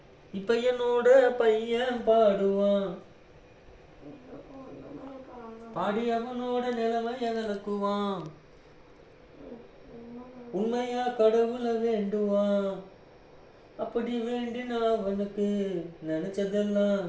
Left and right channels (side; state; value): both; identical; correlation 1.00